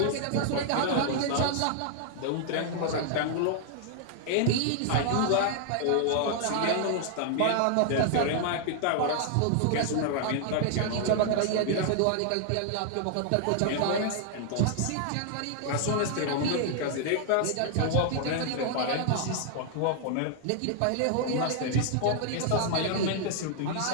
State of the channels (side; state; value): both; different; correlation 0.00